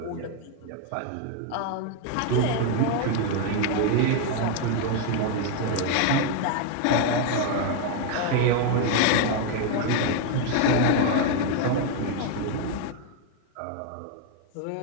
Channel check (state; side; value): different; both; correlation 0.01